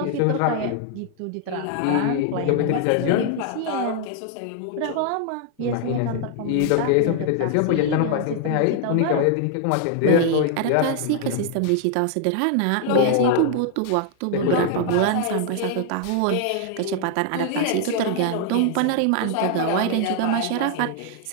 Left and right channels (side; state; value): both; different; correlation 0.00